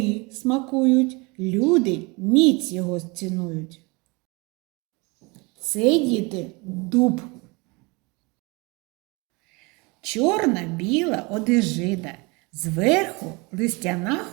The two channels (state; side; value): quieter; left; 27.3 dB